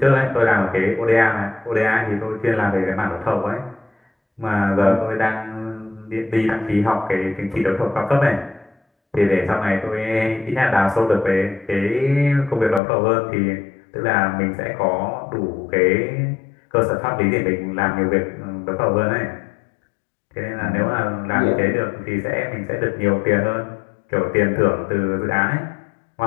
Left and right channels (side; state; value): right; drops out; at 12.8 s